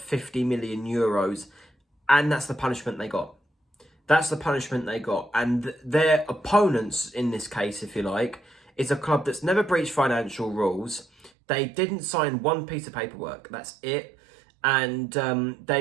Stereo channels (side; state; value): left; drops out; at 11.3 s